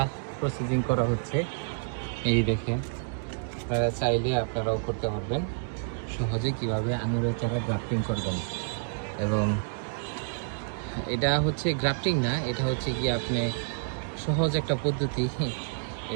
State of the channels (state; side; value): silent; left; digital silence